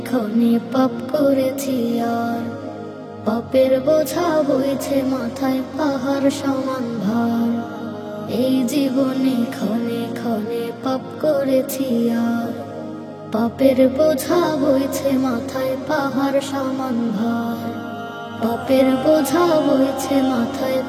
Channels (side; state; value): both; identical; correlation 1.00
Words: ক্ষণে পাপ করেছি আর পাপের বোঝা বইছে মাথায় পাহাড় সমান ভার। এই জীবনে ক্ষণে ক্ষণে পাপ করেছি আর পাপের বোঝা বইছে মাথায় পাহাড় সমান ভার। পাপের বোঝা বইছে মাথায়